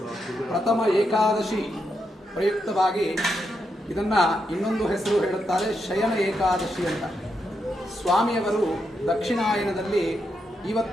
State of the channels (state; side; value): normal; both; correlation 0.83